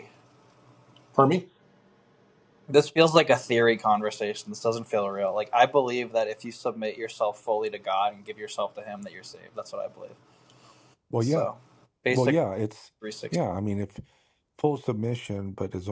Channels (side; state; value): both; identical; correlation 1.00